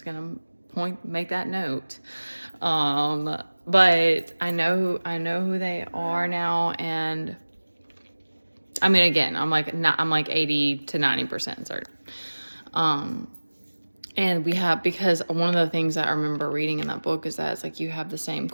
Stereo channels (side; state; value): both; inverted; correlation -1.00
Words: gonna make that note. But I know who they are now, and I mean, again, I'm like 80 to 90% certain. And because one of the things that I remember reading in that book is that it's like you have the same